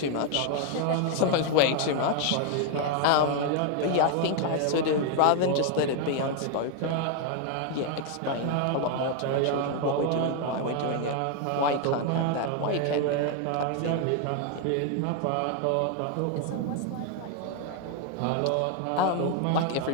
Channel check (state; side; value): different; both; correlation 0.01